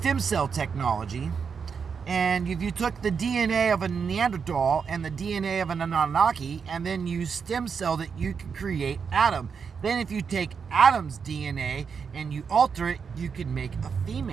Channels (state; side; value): quieter; left; 6.1 dB